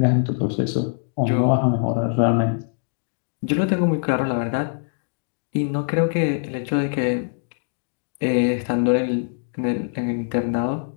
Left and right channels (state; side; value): silent; right; digital silence